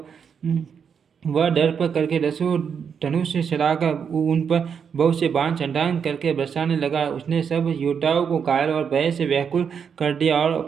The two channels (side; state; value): left; quieter; 7.0 dB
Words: वह दर्प करके दसों धनुष से चढ़ाकर उन पर बहुत से बाण छंटांग करके बरसाने लगा। उसने सब योद्धाओं को घायल और भय से व्याकुल कर दिया और